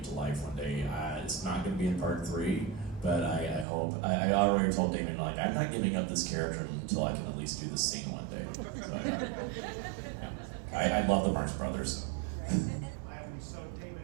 to life one day. It's not going to be in part 3, but I hope. I already told Damien, like, I'm not giving up this character until I can at least do this scene one day. So I love the Marx Brothers. So. So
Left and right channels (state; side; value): drops out; left; at 3.7 s